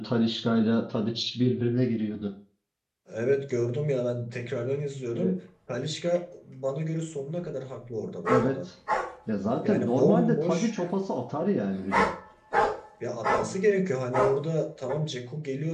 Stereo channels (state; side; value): identical; both; correlation 1.00